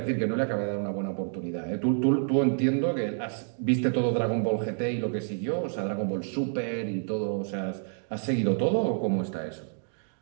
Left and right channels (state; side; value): silent; left; digital silence